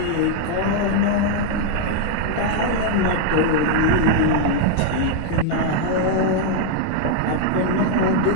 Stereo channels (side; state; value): both; different; correlation 0.00